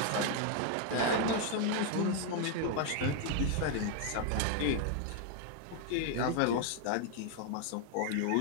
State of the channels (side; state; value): both; different; correlation 0.00